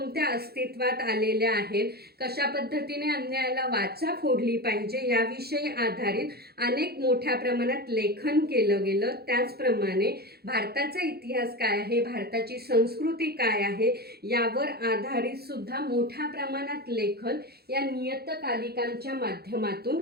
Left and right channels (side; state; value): left; late; 0.46 ms